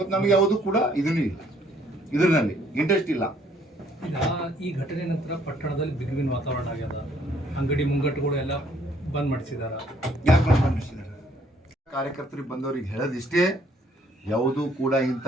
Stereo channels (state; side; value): normal; both; correlation 0.64